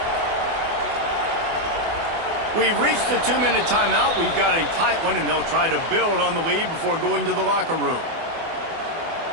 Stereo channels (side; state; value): left; late; 24 ms